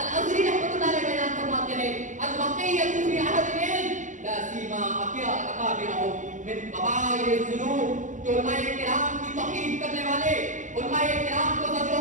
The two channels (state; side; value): late; left; 0.36 ms